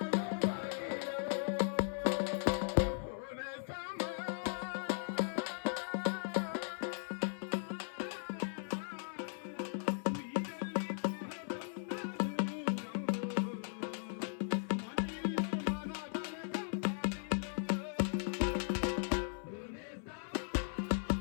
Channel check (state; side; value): silent; right; 52 dB below the other